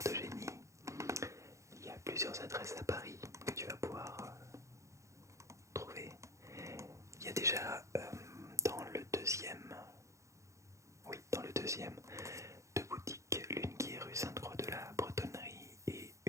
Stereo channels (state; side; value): late; left; 0.15 ms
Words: de génie, il y a plusieurs adresses à Paris que tu vas pouvoir trouver. Il y a déjà dans le deuxième, oui, dans le deuxième, deux boutiques, l'une qui est rue Sainte-Croix de la Bretonnerie et